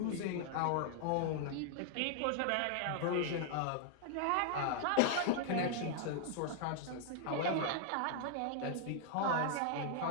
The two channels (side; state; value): both; different; correlation 0.00